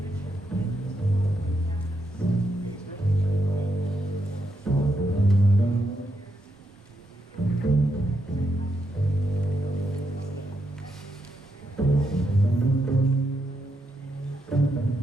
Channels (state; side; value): normal; both; correlation 0.81